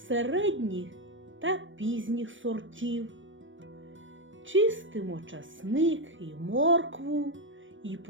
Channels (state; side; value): late; left; 0.56 ms